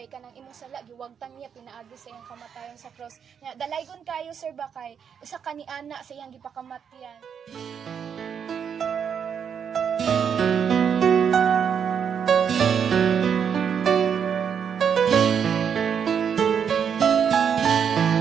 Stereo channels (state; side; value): quieter; left; 7.5 dB